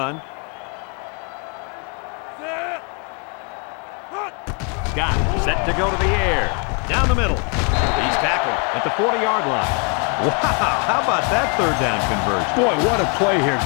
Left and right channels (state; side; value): quieter; right; 35.9 dB